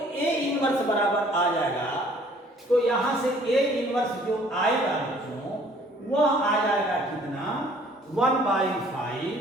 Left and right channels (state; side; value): normal; both; correlation 0.57